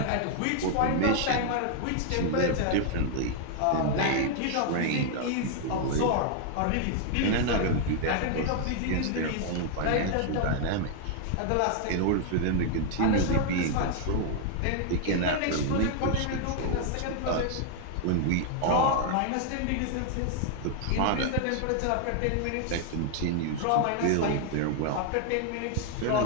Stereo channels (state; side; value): different; both; correlation 0.00